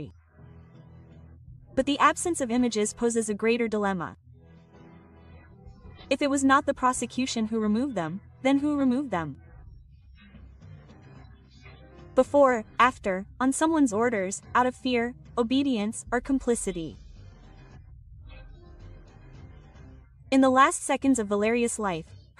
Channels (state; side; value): identical; both; correlation 1.00